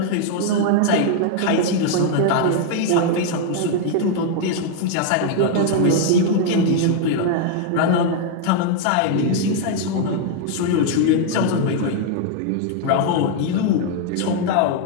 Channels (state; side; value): different; both; correlation 0.00